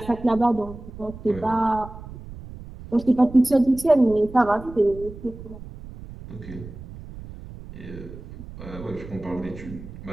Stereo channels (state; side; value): noise; right; rumble, 14 dB below the sound